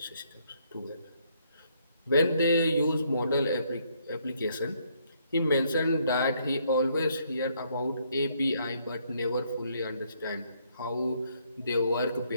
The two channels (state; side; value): inverted; both; correlation -0.70